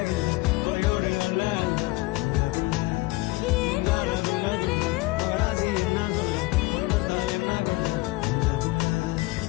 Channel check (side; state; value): right; quieter; 21.4 dB